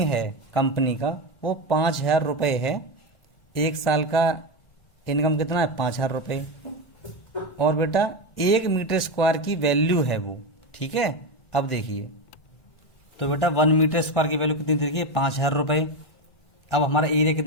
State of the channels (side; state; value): right; late; 1.4 ms